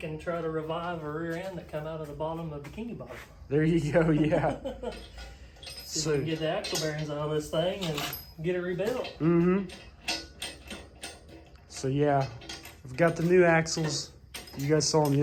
and try to revive a rear end that come out of the bottom of the bikini bottom. There you go, yeah. See if we can get the axle bearings out of this thing and get it rebuilt. So yeah, I've got the new axles. You guys saw in the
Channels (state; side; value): identical; both; correlation 1.00